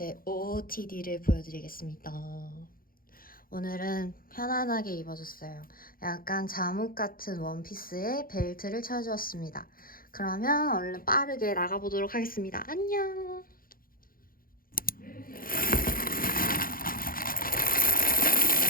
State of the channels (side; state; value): right; late; 0.42 ms